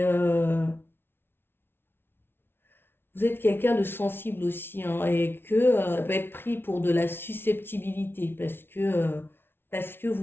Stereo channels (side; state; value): right; late; 0.11 ms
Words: vous êtes quelqu'un de sensible aussi, hein, et que ça peut être pris pour de la susceptibilité parce que